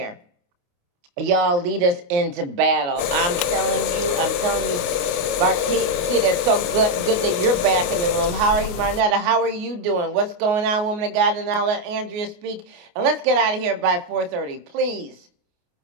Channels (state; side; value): late; left; 28 ms